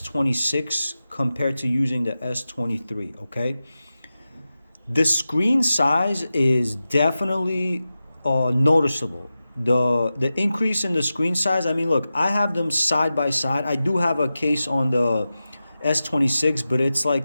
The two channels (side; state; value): both; inverted; correlation -0.94